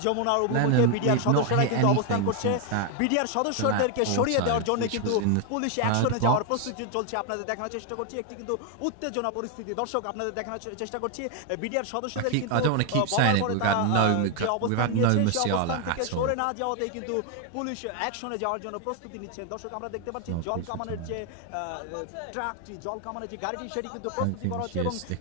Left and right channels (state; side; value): different; both; correlation 0.01